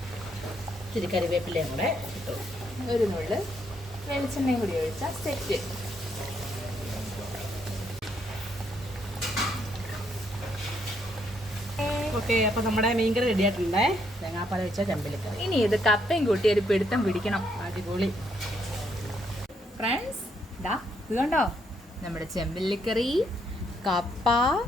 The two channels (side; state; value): both; normal; correlation 0.74